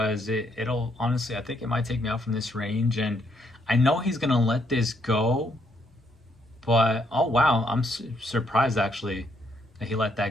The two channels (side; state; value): both; normal; correlation 0.73